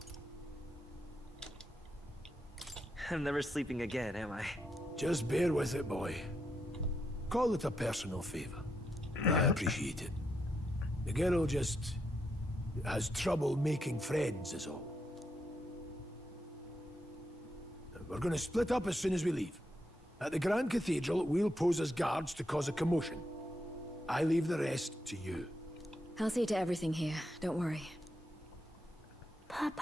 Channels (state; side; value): normal; both; correlation 0.82